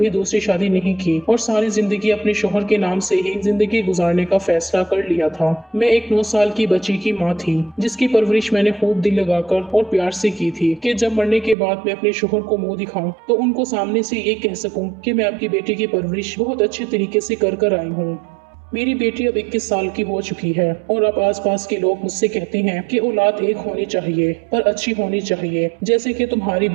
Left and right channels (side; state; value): left; drops out; at 11.6 s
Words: दूसरी शादी नहीं की और सारी जिंदगी अपने शौहर के नाम से ही जिंदगी गुजारने का फैसला कर लिया था। मैं एक 9 साल की बच्ची की माँ थी, जिसकी परवरिश मैंने खूब दिल लगाकर और प्यार से की थी कि जब मरने के बाद मैं अपने शौहर को मुंह दिखाऊं तो उनको सामने से ये कह सकूं कि मैं आपकी बेटी की परवरिश बहुत अच्छे तरीके से कर आई हूँ। मेरी बेटी अब 21 साल की हो चुकी है और अब आसपास के लोग मुझसे कहते हैं कि औलाद एक होनी चाहिए, पर अच्छी होनी चाहिए, जैसे कि तुम्हारी